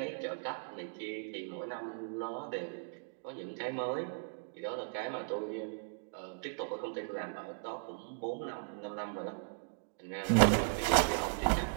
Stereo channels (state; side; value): silent; left; digital silence